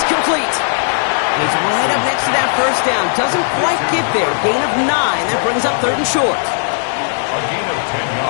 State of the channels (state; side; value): silent; right; 65 dB below the other